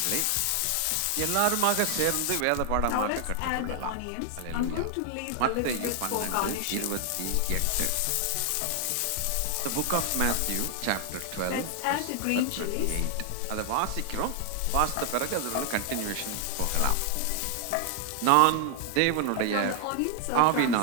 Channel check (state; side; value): different; both; correlation 0.00